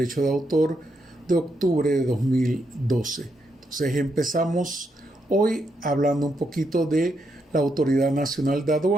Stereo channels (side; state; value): both; normal; correlation 0.80